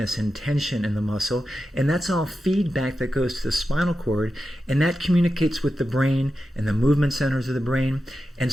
and tension in the muscle, and that's all feedback that goes to the spinal cord, and that communicates with the brain and the movement centers of the brain. And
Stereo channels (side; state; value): both; normal; correlation 0.91